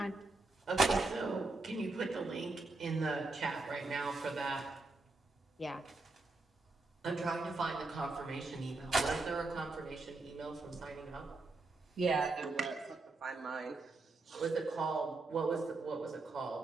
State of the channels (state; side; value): quieter; left; 3.3 dB